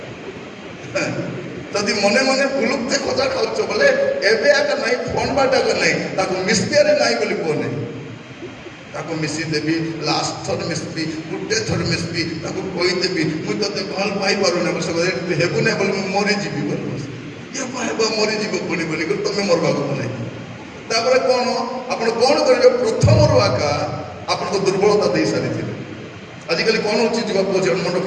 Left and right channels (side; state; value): both; identical; correlation 1.00